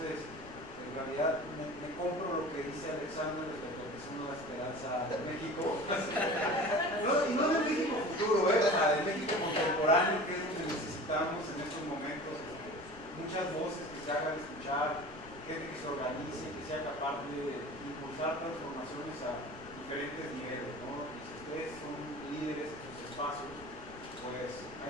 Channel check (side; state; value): left; noise; rumble, 19 dB below the sound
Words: el realidad me compro lo que dice Alexander respecto a que es una esperanza de México. Y no de México futuro, o sea, de México contemporáneo, que es donde necesitamos en estos momentos muchas voces que se hagan escuchar, gente que se organice, que sea capaz de impulsar transformaciones a diferentes niveles, ¿no? Y si ustedes son líderes en sus espacios, pues